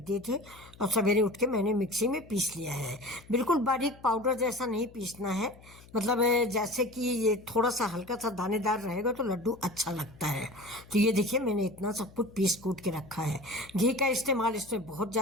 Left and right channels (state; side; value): noise; left; hum, 22 dB below the sound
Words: दिए थे और सवेरे उठ के मैंने मिक्सी में पीस लिया है। बिल्कुल बारीक पाउडर जैसा नहीं पीसना है, मतलब जैसे कि ये थोड़ा सा हल्का सा दानेदार रहेगा तो लड्डू अच्छा लगता है। तो ये देखिए, मैंने इतना सब कुछ पीस कूट के रखा है। घी का इस्तेमाल इसमें बहुत